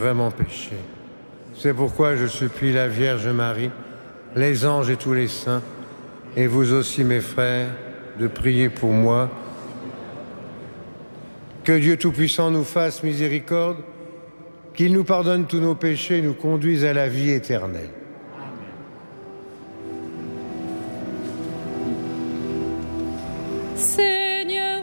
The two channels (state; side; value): inverted; both; correlation -1.00